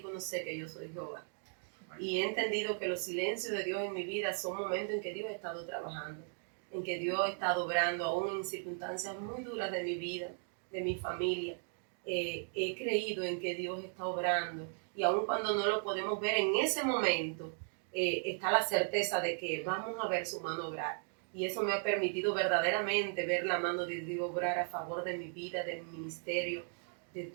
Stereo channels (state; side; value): silent; left; 53 dB below the other